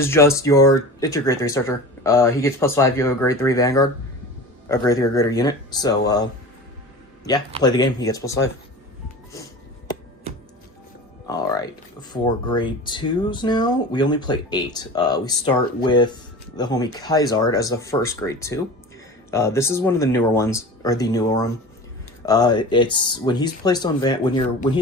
just your grade 3 starter. He gets +5 if you have a grade 3 Vanguard, a grade 3 or greater unit. So, yeah, play the game, he gets +5. Alright, for grade 2s now, we only play 8. We start with the homie Kaisard as the first grade 2. This is one of the newer ones, or the newer one. It's when he's placed on when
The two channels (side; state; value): both; normal; correlation 0.34